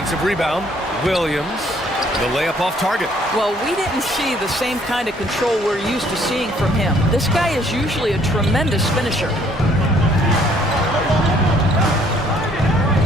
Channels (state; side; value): normal; both; correlation 0.62